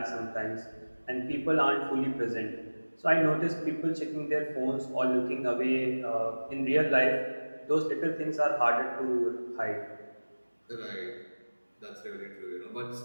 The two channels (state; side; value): inverted; both; correlation -1.00